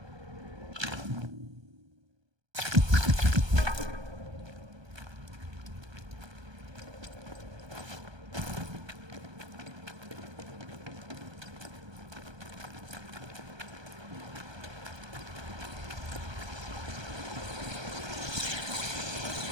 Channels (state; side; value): late; left; 1.2 ms